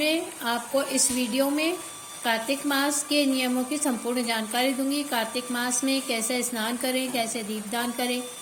आपको इस वीडियो में कार्तिक मास के नियमों की संपूर्ण जानकारी दूंगी। कार्तिक मास में कैसे स्नान करें, कैसे दीपदान करें,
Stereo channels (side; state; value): both; identical; correlation 1.00